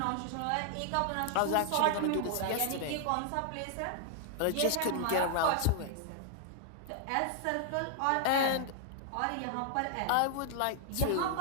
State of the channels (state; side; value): different; both; correlation 0.00